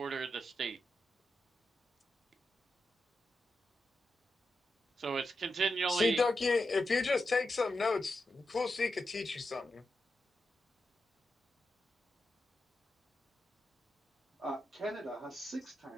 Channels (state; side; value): normal; both; correlation 0.88